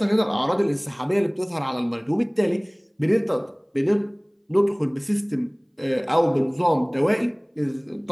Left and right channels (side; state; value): both; identical; correlation 1.00